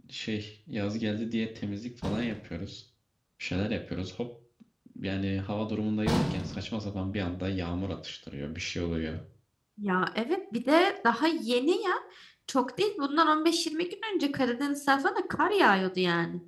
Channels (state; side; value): identical; both; correlation 1.00